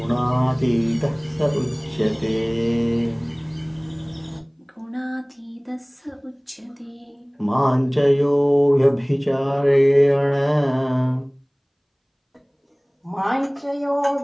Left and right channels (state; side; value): identical; both; correlation 1.00